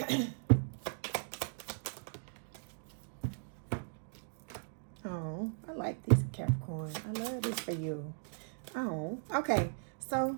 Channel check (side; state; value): left; silent; digital silence